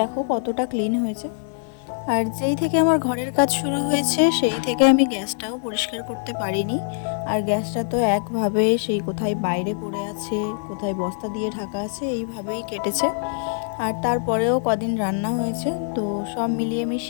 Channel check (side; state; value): right; silent; digital silence